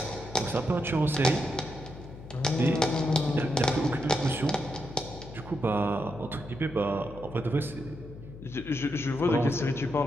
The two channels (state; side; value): noise; left; hum, 15 dB below the sound